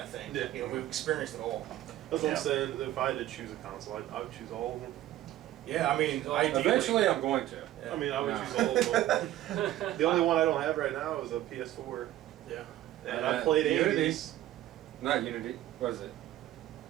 think. Yeah. We've experienced it all. That's what I'm saying. If I had to choose a console, I would choose all of them. Yeah, I mean, ideally, Eventually, I'm going to. Yeah. I mean, I would Yeah. choose all of them. The only one I don't have right now is a PS4. Yeah. And I played Unity. 80s. Not Unity. What is it?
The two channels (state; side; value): quieter; left; 13.9 dB